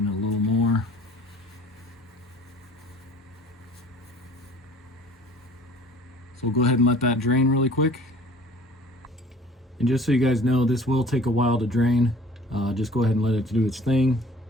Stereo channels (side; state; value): both; normal; correlation 0.49